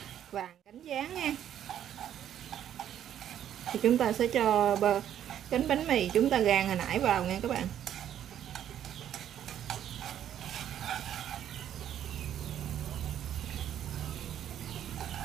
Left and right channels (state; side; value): quieter; left; 10.4 dB